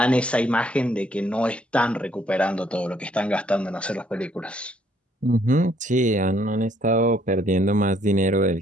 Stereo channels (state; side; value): normal; both; correlation 0.66